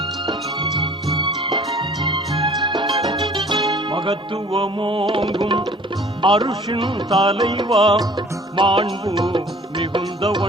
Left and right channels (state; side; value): normal; both; correlation 0.51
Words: மகத்துவமோங்கும் அருஷின் தலைவா, மாண்பு